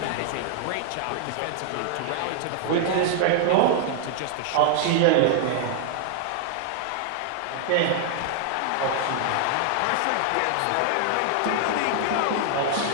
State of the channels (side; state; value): both; different; correlation 0.00